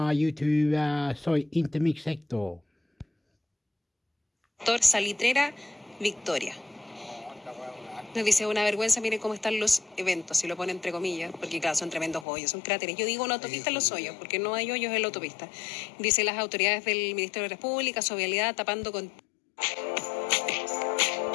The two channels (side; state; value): right; drops out; at 12.2 s